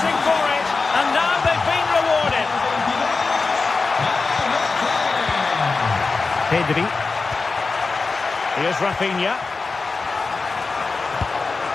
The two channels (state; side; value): quieter; right; 4.1 dB